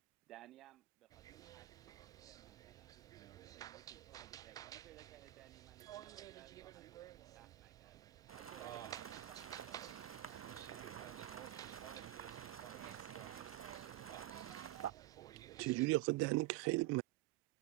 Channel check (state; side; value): quieter; left; 16.3 dB